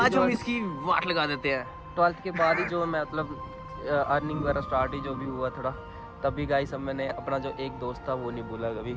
जो हम इसकी वाट लगा देते हैं। 12th के बाद ही जो मैं मतलब अर्निंग वगैरह स्टार्ट ही जो भी हुआ थोड़ा, तभी गाइस अब मैंने अपना जो एक दोस्त था वो नहीं भूला कभी,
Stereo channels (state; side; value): identical; both; correlation 1.00